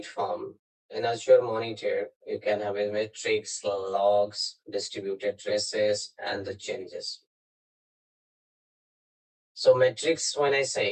in Azure Monitor, you can have metrics, logs, distributed traces, and the changes. So metrics, when I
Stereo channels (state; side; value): identical; both; correlation 1.00